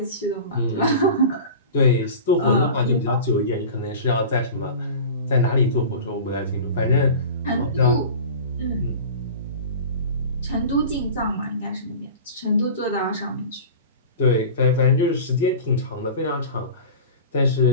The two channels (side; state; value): both; inverted; correlation -0.35